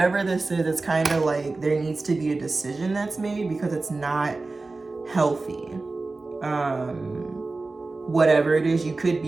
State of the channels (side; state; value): left; quieter; 3.5 dB